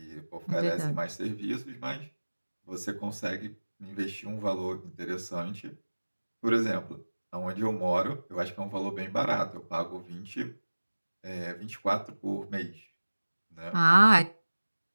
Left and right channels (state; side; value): inverted; both; correlation -1.00